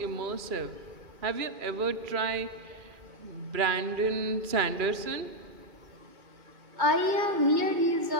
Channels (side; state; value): left; late; 2.4 ms